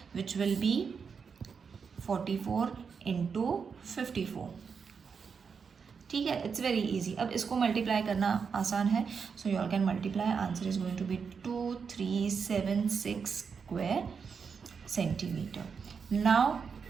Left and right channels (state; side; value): quieter; left; 6.0 dB